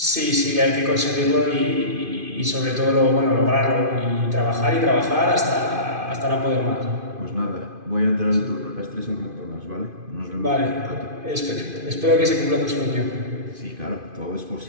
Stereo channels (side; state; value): left; late; 2.5 ms